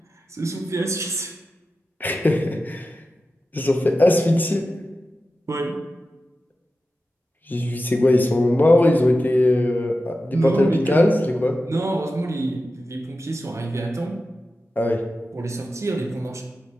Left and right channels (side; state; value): both; normal; correlation 0.93